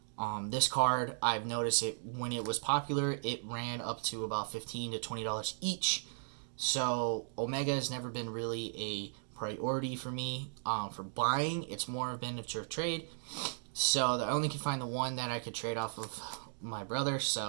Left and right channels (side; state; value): left; silent; digital silence